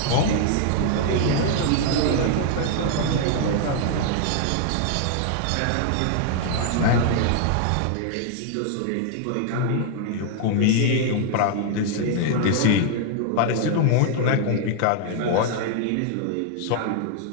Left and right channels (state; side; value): different; both; correlation 0.00